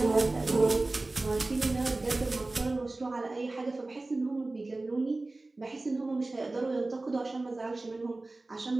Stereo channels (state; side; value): quieter; left; 3.1 dB